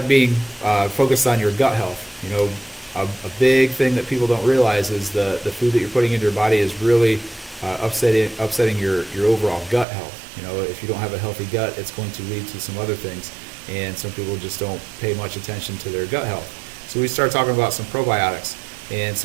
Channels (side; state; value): left; drops out; at 9.9 s